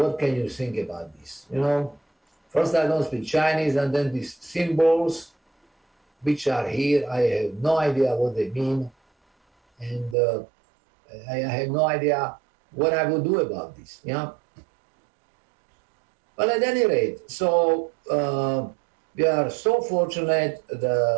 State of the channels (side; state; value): left; drops out; at 10.2 s